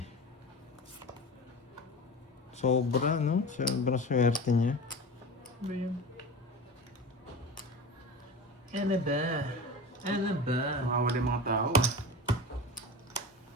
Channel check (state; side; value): normal; both; correlation 0.31